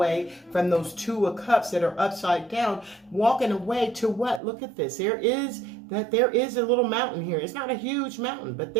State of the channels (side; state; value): left; drops out; at 4.4 s